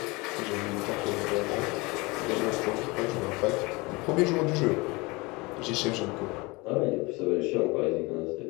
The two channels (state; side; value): quieter; right; 25.0 dB